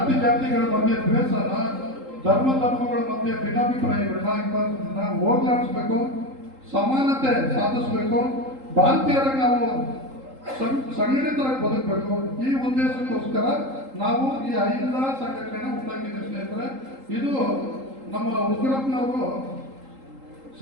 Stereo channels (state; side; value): late; left; 3.8 ms